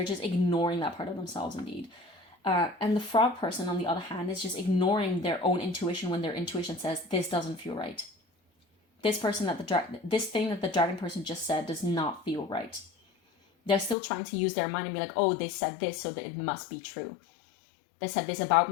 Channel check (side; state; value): right; drops out; at 14.0 s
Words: And the frog person, on the other hand, is just ignoring their own intuition when their intuition says, this doesn't feel right. This thing that the dragon person just said does not feel right. They're still trying to use their mind and be like, oh, they said this, so that it must be true. They said this about